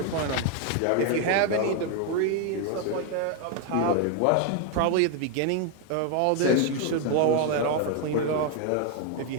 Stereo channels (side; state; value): both; different; correlation 0.01